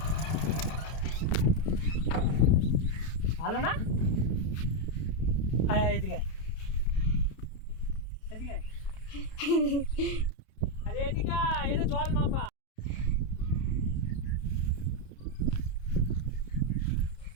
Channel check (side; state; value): right; late; 31 ms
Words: ভালো না? আয় এদিকে, এদিকে, আরে এদিকে, এটা জল মাপা।